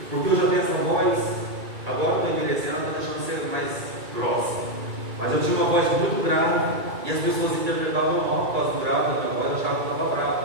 porque eu já tenho essa voz. Agora estou envelhecendo, estou deixando ser mais grossa. Mas eu tinha uma voz muito grave e as pessoas interpretavam mal por causa do grave da minha voz, achavam que eu estava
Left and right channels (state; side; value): late; left; 2.3 ms